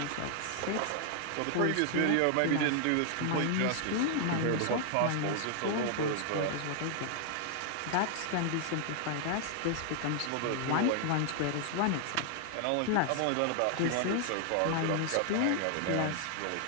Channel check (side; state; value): both; different; correlation 0.00